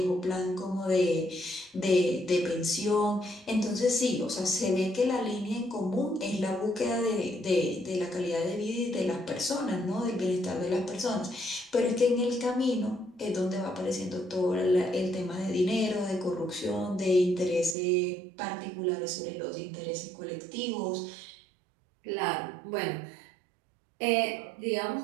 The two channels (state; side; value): drops out; left; at 17.8 s